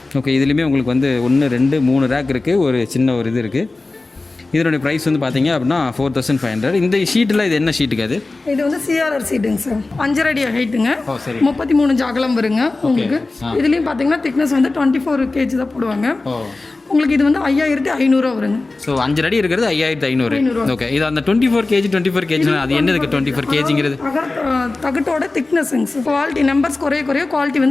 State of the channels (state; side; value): quieter; right; 3.3 dB